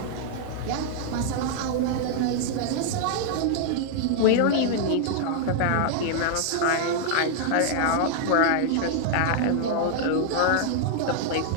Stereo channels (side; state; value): both; different; correlation -0.01